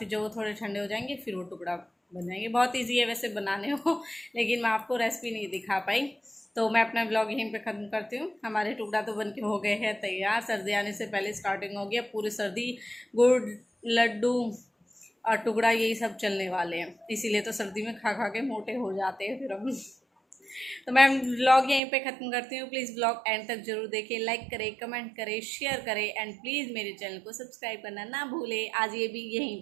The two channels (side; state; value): left; drops out; at 21.8 s